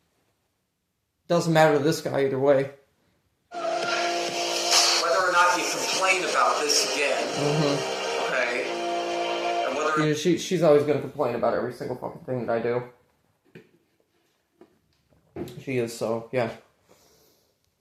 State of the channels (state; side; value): identical; both; correlation 1.00